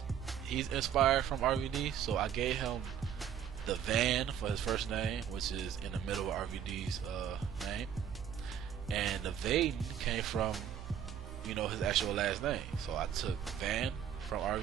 He's inspired from RVD, so I gave him the Van for his first name, which is in the middle of RVD's name, and the Vaden came from, you know, his actual last name. So I took Van from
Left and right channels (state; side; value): quieter; left; 9.1 dB